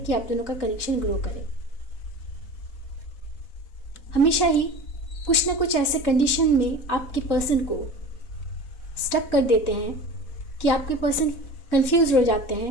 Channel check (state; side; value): late; right; 3.7 ms